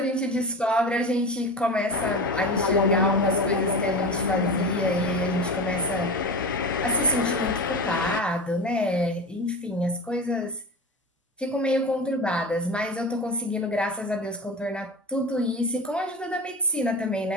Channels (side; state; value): both; normal; correlation 0.27